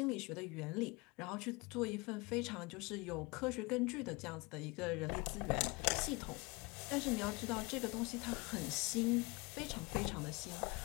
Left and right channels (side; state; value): right; quieter; 26.0 dB